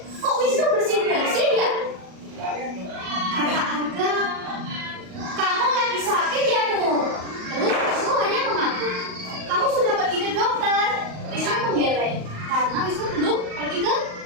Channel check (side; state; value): left; late; 38 ms